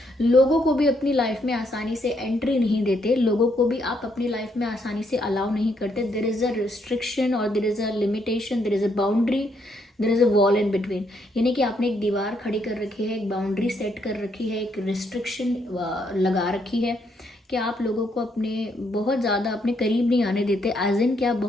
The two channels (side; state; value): both; normal; correlation 0.74